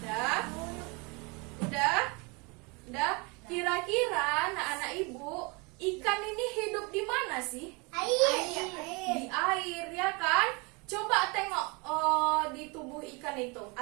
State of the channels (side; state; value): left; quieter; 29.2 dB